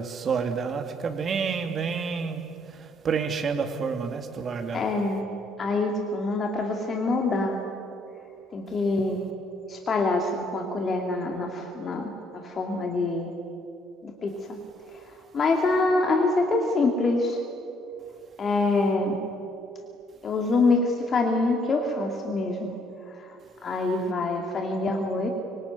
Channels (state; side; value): normal; both; correlation 0.68